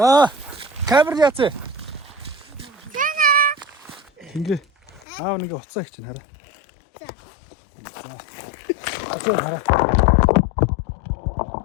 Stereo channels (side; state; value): right; drops out; at 5.1 s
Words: Камер яац. Ингээ. Нэг уцаа их чинь хараа. За хараа.